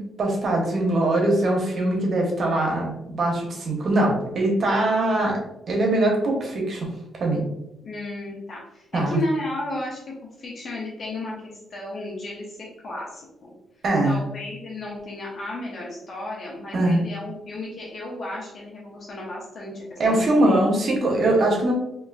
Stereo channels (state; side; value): normal; both; correlation 0.75